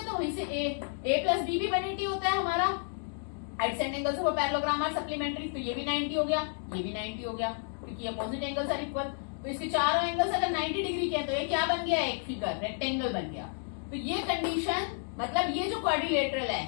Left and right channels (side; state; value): right; silent; 57 dB below the other